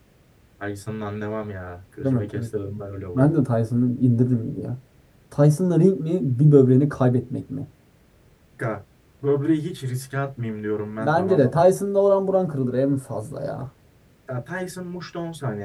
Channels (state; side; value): identical; both; correlation 1.00